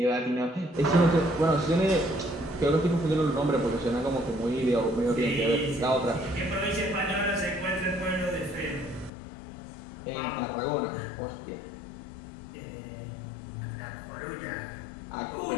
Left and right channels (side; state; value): right; drops out; at 9.1 s